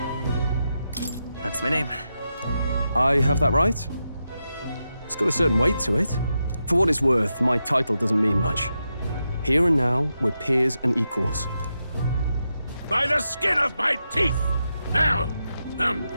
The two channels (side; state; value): both; inverted; correlation -0.87